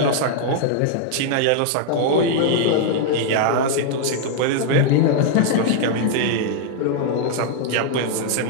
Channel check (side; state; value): both; different; correlation 0.00